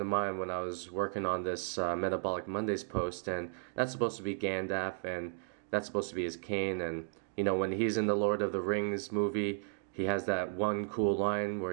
mind when I was working on this Metabolic Mondays post, and that's supposed to be Gandalf, and that's supposed to be his cane, and you know, when he's in the Lord of the Rings movie, he has that one cool line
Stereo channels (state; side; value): silent; left; digital silence